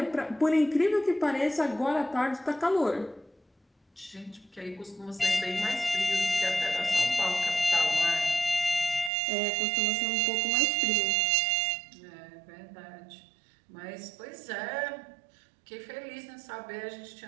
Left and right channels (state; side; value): drops out; left; at 9.1 s